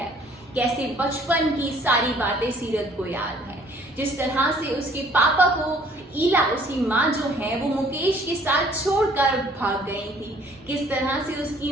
कैसे बचपन की सारी बातें सीरत को याद है, जिस तरह से उसके पापा को ईला, उसकी माँ जो है वो मुकेश के साथ छोड़कर भाग गई थी, किस तरह से उसकी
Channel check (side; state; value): both; normal; correlation 0.58